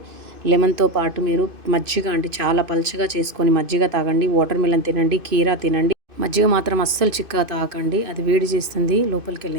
లెమన్తో పాటు మీరు మజ్జిగ అంటే చాలా పల్చగా చేసుకొని మజ్జిగ తాగండి. వాటర్ మిలన్ తినండి, కీరా తినండి. మజ్జిగ మాత్రం అస్సలు చిక్కగా తాగండి, అది వేడి చేస్తుంది లోపలికి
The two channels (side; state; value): left; late; 2.5 ms